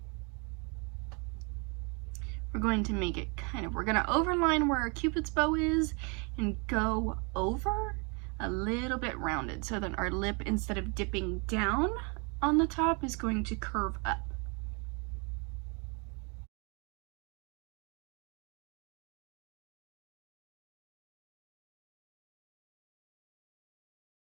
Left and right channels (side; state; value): left; quieter; 32.9 dB